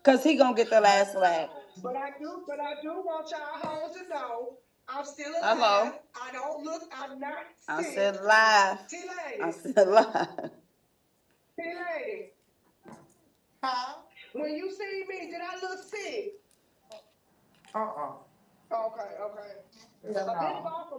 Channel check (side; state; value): both; identical; correlation 1.00